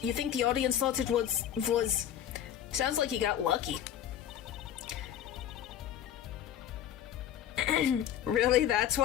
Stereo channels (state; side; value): quieter; right; 10.3 dB